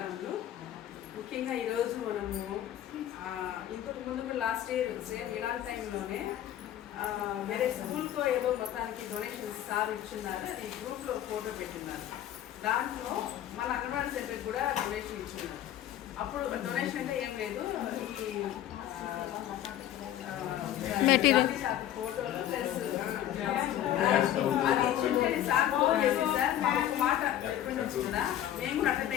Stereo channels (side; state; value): right; quieter; 11.9 dB